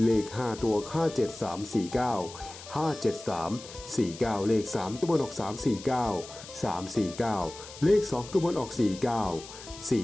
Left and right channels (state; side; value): noise; left; hiss, 15 dB below the sound